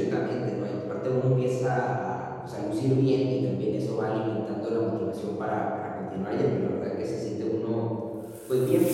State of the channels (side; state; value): both; identical; correlation 1.00